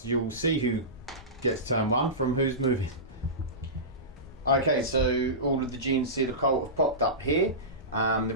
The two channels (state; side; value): normal; both; correlation -0.19